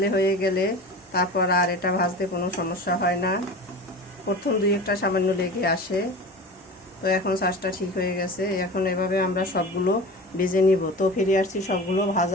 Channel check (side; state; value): both; normal; correlation 0.34